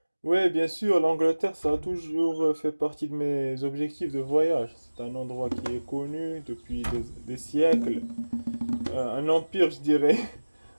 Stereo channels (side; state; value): both; inverted; correlation -1.00